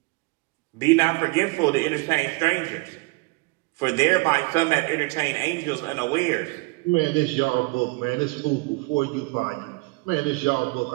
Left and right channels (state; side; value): quieter; left; 25.6 dB